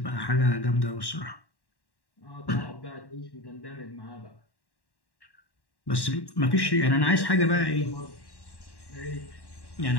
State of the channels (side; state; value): right; late; 1.1 ms